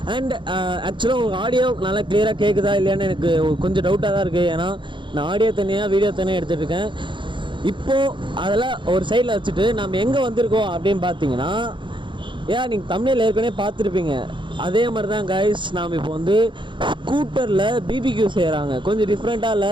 அண்ட் ஆக்சுவலாக உங்களுக்கு ஆடியோ நல்லா கிளியராக கேட்குதா இல்லையான்னு எனக்கு கொஞ்சம் டவுட்டாக தான் இருக்குது. ஏன்னா நான் ஆடியோ தனியாக வீடியோ தனியாக எடுத்துகிட்டு இருக்கேன். இப்போது அதெல்லாம் ஒரு சைடில் வச்சுட்டு நம்ம எங்கே வந்திருக்கோம் அப்படின்னு பார்த்தீங்கன்னா, ஏன் நீங்கள் தமிழில் ஏற்கனவே பார்த்துருப்பீங்க. அதே மாதிரி தான் கைஸ், நாம் இப்போ வந்து ஸ்கூட்டரில் பிபிக்யூ செய்கிறாங்க. கொஞ்சம் டிஃப்ரெண்ட்டாக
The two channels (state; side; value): late; left; 0.23 ms